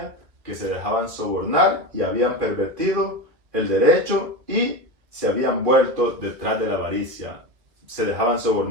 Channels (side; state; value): left; late; 2.2 ms